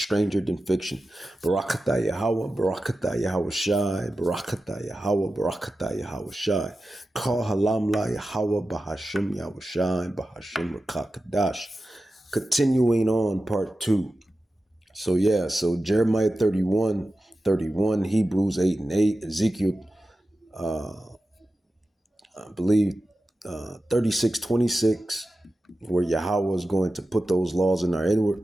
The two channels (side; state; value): both; normal; correlation 0.93